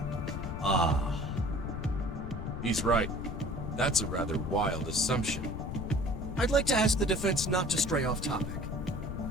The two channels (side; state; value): left; noise; rumble, 6 dB below the sound